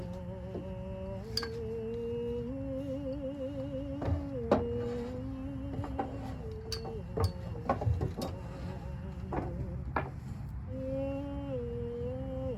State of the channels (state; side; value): identical; both; correlation 1.00